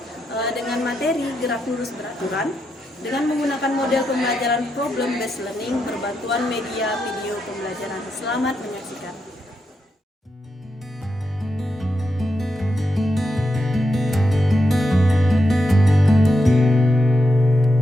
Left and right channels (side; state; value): both; normal; correlation 0.85